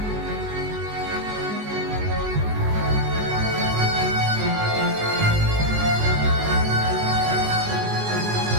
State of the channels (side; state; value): left; late; 19 ms